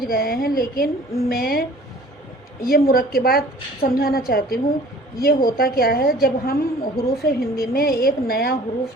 गए हैं, लेकिन मैं ये मुरक्किबात समझाना चाहती हूँ। ये होता क्या है, जब हम हुरूफ हिंदी में एक नया हुरूफ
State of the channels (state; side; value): normal; both; correlation 0.49